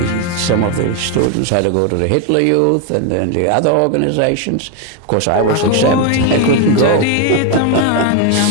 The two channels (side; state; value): both; different; correlation 0.01